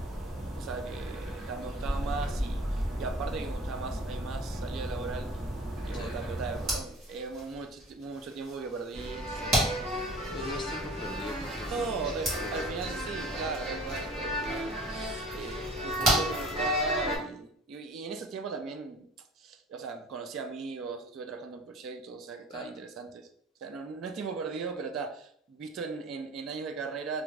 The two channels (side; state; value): both; normal; correlation 0.45